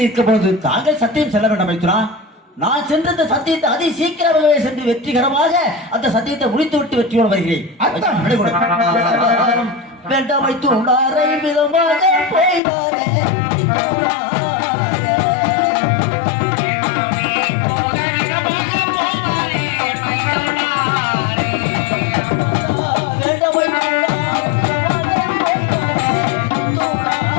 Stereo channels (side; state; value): right; drops out; at 12.6 s